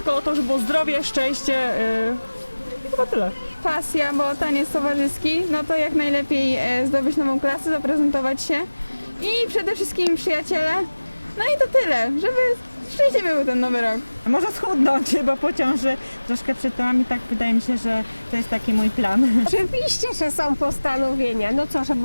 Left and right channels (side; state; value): both; inverted; correlation -1.00